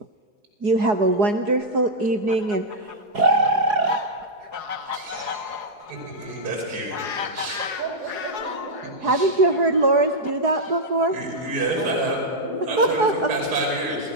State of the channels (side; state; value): left; late; 4.8 ms